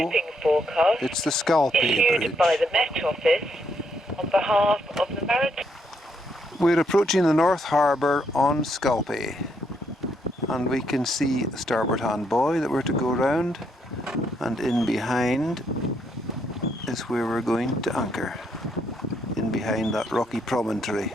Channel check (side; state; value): both; normal; correlation 0.75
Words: shipping forecast it's the Scalpay issued Bridge. by the Met Office on behalf of the Maritime. We're approaching the North Harbour on Scalpay, and we can see the starboard hand buoy that we're to go round, and in behind is where we're going to anchor, in behind that rocky promontory.